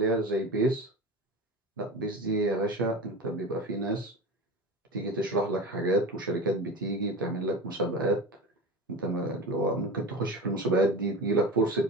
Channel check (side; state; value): both; normal; correlation 0.30